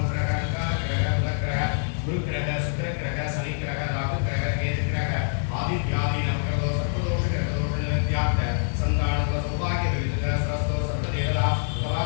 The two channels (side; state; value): right; silent; digital silence